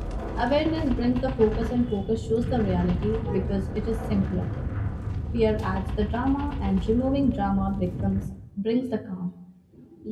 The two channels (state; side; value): identical; both; correlation 1.00